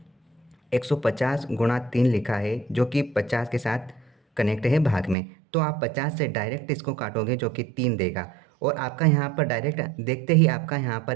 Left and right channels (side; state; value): left; drops out; at 5.2 s